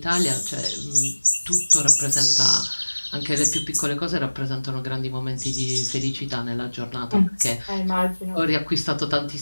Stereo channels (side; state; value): both; inverted; correlation -1.00